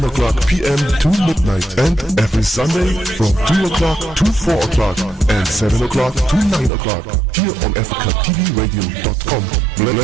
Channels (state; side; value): drops out; left; at 6.7 s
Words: o'clock p.m. to midnight. And every Sunday from 2 o'clock to 4 o'clock. And 7 o'clock to 9 o'clock. Here on AfricaTVRadio.com.